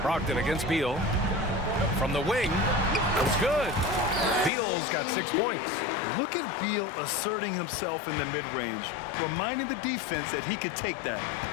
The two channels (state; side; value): drops out; right; at 4.5 s